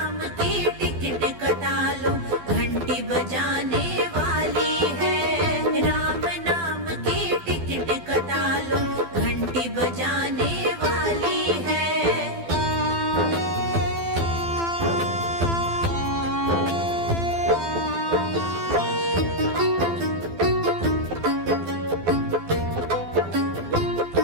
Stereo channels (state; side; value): late; left; 12 ms